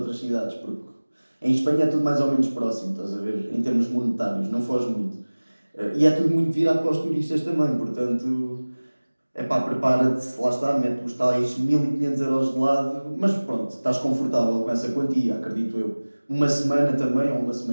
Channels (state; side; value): inverted; both; correlation -1.00